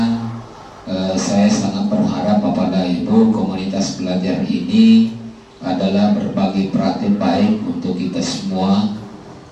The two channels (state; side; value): identical; both; correlation 1.00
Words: saya sangat berharap Bapak dan Ibu, komunitas belajar ini adalah berbagi praktik baik untuk kita semua.